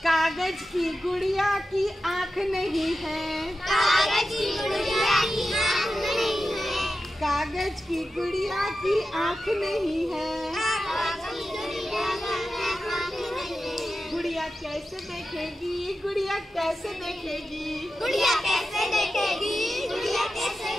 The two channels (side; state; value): both; normal; correlation 0.92